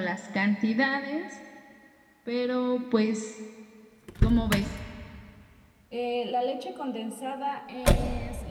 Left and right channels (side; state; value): both; identical; correlation 1.00